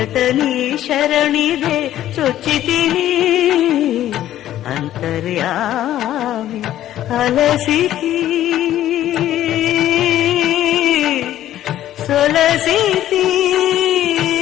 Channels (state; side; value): quieter; right; 12.7 dB